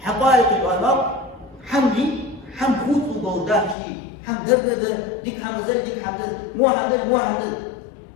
حقائق الأمر حمدي حم خوت وجوداه شيء حم درده ديك حم زل ديك حم زل مو حم زل مو حم زل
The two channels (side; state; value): right; drops out; at 3.8 s